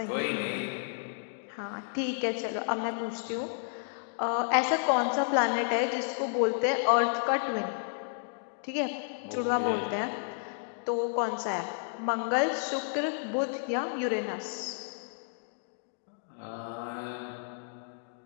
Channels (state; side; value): silent; right; digital silence